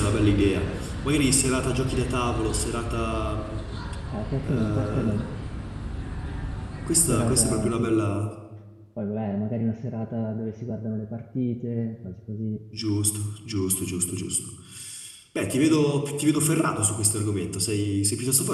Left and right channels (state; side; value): identical; both; correlation 1.00